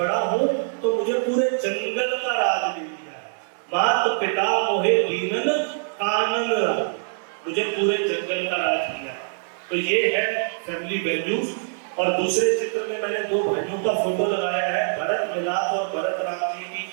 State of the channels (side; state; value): left; silent; digital silence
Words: हूं तो मुझे पूरे जंगल का राज दे दिया है। मात पिता मोहे दीनन कानन राज, मुझे पूरे जंगल का राज दिया है। तो ये है फैमिली वैल्यूज। और दूसरे चित्र में मैंने दो भाइयों का फोटो लगाया है। भरत मिलाप और भरत राम जी की